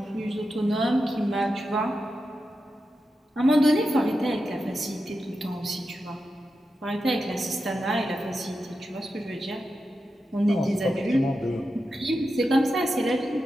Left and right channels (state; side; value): normal; both; correlation 0.90